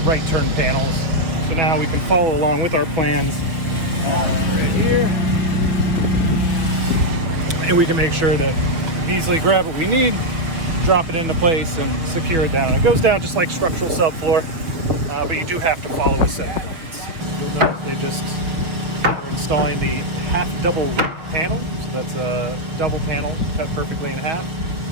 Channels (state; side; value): late; left; 6.4 ms